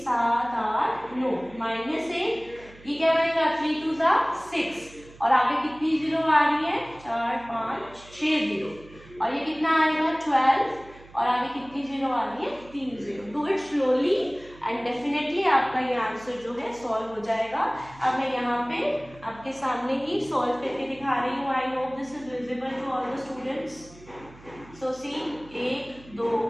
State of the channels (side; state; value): right; noise; hum, 22 dB below the sound